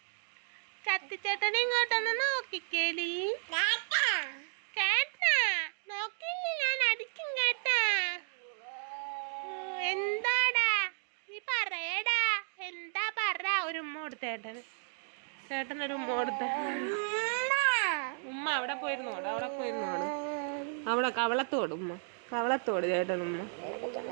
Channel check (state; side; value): silent; left; digital silence